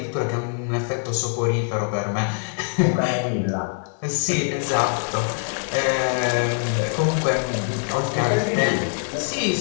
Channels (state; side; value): silent; right; 63 dB below the other